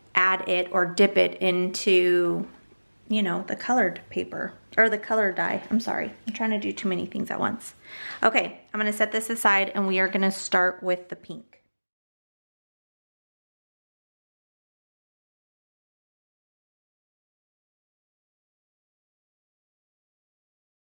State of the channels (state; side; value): inverted; both; correlation -1.00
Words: add it or dip it into, you know, the colored paper or the color dye. I'm sorry, I'm trying to do too many things at once. Okay, I'm gonna set this aside and we are gonna start with the pink.